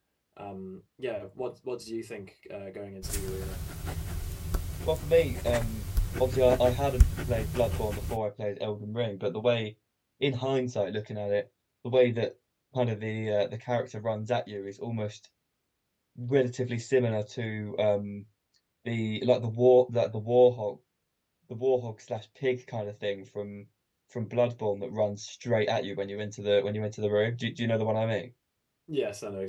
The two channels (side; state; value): both; identical; correlation 1.00